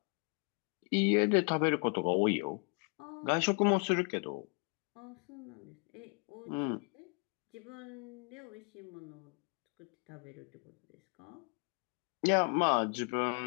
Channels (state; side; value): quieter; right; 35.6 dB